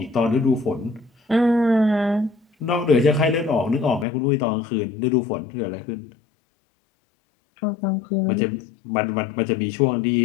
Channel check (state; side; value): drops out; right; at 4.0 s